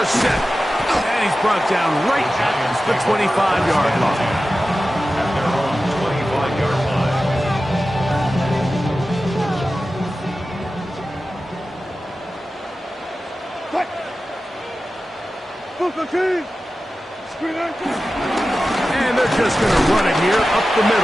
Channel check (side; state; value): both; normal; correlation 0.94